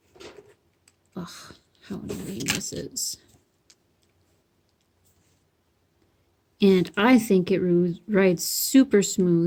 Ugh, how annoying this is. And I think it rides super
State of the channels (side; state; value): both; identical; correlation 1.00